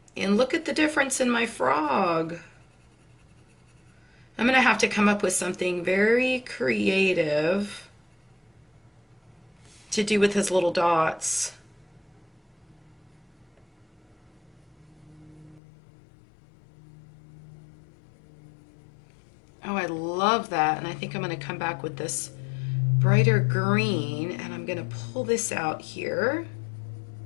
And look at the difference in my frog. I'm going to have to come up with something very creative to do with his little dots. Oh, I love that. And I think I'm going to come back with this brighter green, and I'm going to pull this out here.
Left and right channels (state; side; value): drops out; right; at 15.6 s